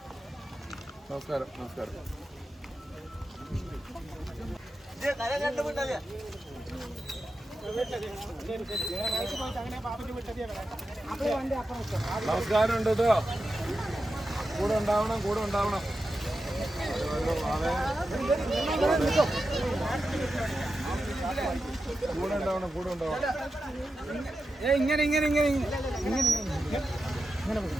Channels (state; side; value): normal; both; correlation 0.90